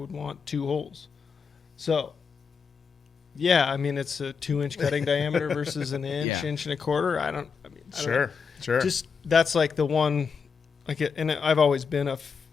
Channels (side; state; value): right; quieter; 5.8 dB